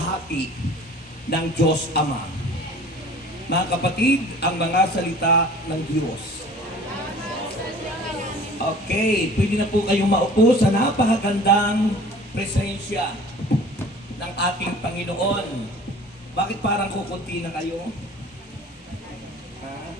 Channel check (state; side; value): normal; both; correlation 0.46